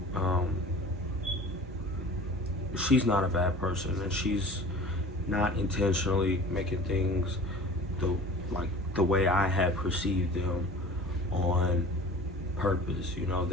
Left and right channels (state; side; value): normal; both; correlation 0.42